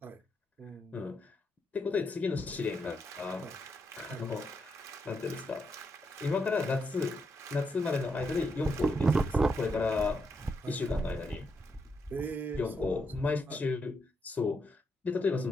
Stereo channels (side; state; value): both; normal; correlation 0.81